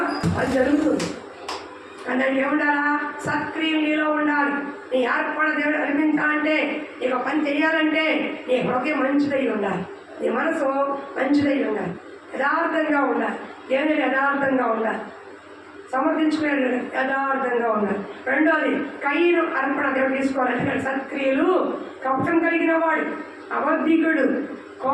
అది జరుగుతుంది. దానికి ఏముండాలా? సత్క్రియలు నీలో ఉండాలి. నీ ఏర్పడ దేవుడు అనిపించాలంటే, నీకు పని చేయాలంటే నీ హృదయం మంచిదై ఉండాలి, నీ మనసు మంచిదై ఉండాలి, యథార్థంగా ఉండాలి. దేవుని యథార్థంగా ఉండాలి, సమర్థించుకునే యథార్థంగా ఉండాలి. రెండోది కయ్యను అర్పణ దేవుడు తీసుకోవాలి. సత్క్రియలు కపటం కలిగిన వాడు, అబద్ధికుడు,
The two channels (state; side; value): identical; both; correlation 1.00